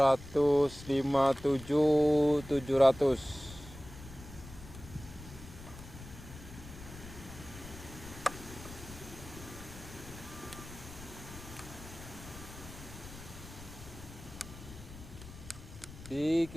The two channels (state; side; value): noise; left; rumble, 15 dB below the sound